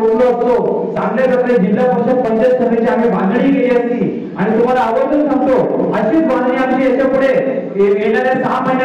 असतो, चांगल्या प्रकारे जिल्हा परिषद पंचायत समितीची आम्ही बांधणी केली असती. आणि तुम्हाला आवर्जून सांगतो, अशीच बांधणी आमची याच्या पुढे येणाऱ्या 6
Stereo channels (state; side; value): identical; both; correlation 1.00